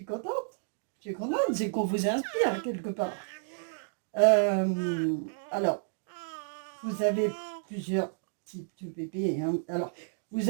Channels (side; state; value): left; silent; digital silence